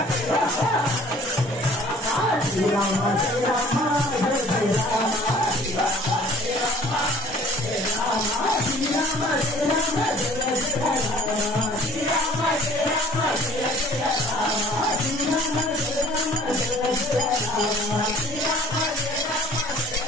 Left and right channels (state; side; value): normal; both; correlation 0.52